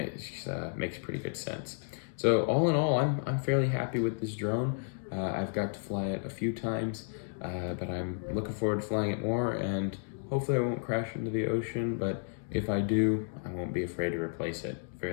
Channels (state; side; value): silent; right; digital silence